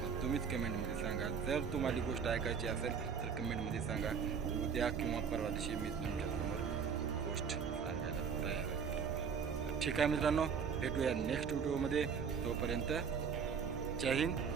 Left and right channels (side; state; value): left; quieter; 6.5 dB